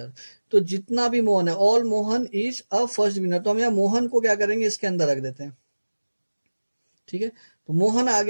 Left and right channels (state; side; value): inverted; both; correlation -1.00